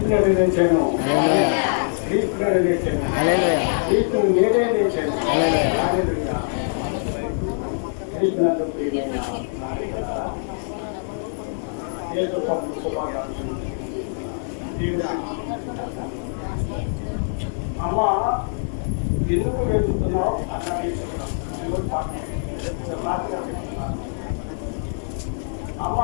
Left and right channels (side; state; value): right; silent; digital silence